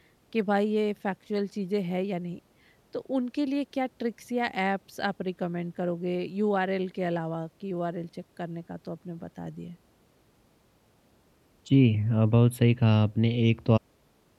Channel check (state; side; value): identical; both; correlation 1.00